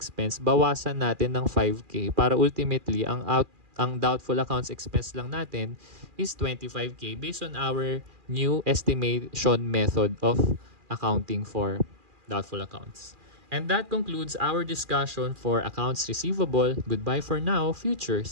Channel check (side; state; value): left; late; 2.4 ms